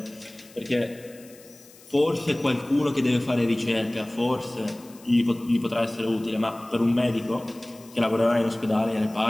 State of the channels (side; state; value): left; noise; hiss, 23 dB below the sound